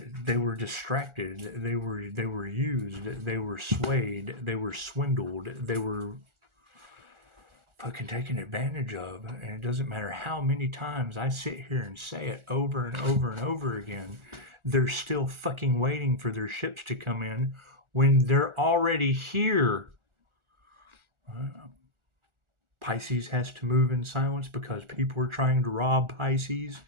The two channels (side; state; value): left; late; 1.4 ms